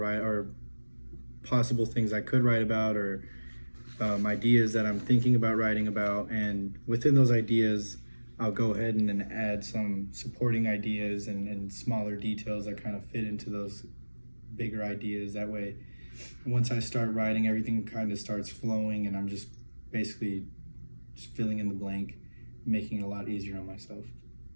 or possible things I could write about, or ideas that I'm thinking about writing about. And within those ideas, I'll go ahead and then add some supporting ideas and smaller details that kind of fit into those bigger ideas. That way, once I start writing, everything kind of starts flowing, and I'm just basically just filling in the blank, making it a lot easier on myself.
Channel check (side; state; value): both; inverted; correlation -1.00